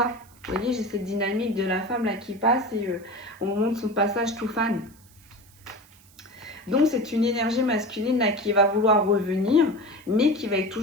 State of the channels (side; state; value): right; noise; hiss, 27 dB below the sound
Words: Vous voyez, j'ai cette dynamique de la femme là qui passe et on montre son passage tout fan. Donc, c'est une énergie masculine là qui va vouloir revenir, mais qui va être